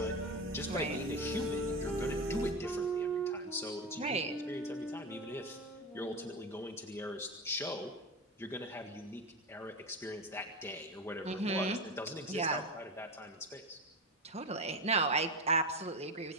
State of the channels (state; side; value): normal; both; correlation 0.20